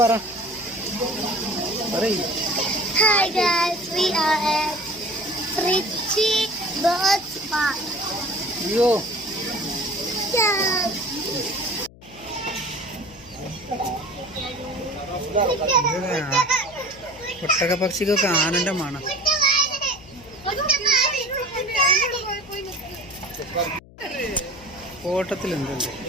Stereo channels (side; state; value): left; noise; hum, 22 dB below the sound